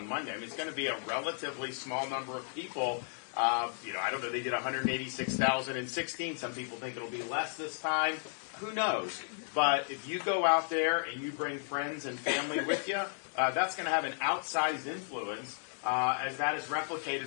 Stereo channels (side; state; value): right; silent; 55 dB below the other